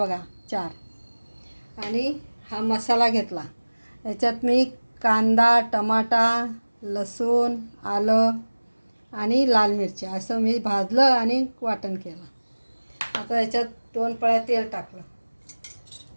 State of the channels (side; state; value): both; inverted; correlation -1.00